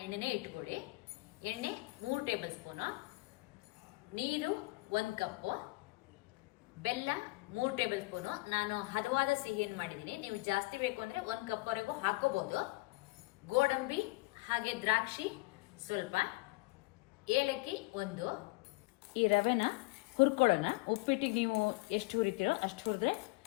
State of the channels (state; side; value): quieter; right; 23.8 dB